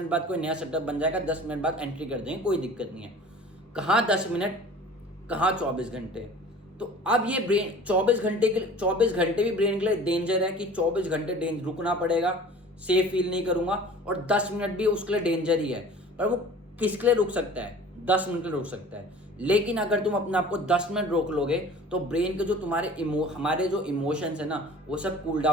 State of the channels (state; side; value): normal; both; correlation 0.44